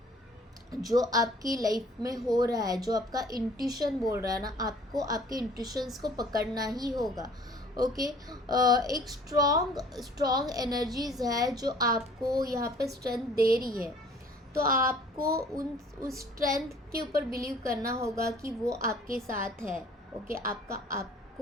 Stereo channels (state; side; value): normal; both; correlation 0.53